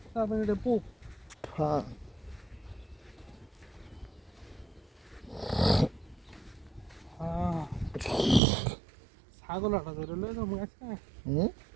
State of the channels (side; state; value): left; drops out; at 8.4 s